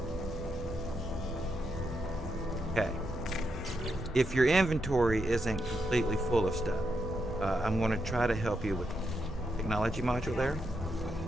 Okay. If your inventory isn't completely full of stuff, I'm going to try to help you with the technology module there.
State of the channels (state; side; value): normal; both; correlation 0.82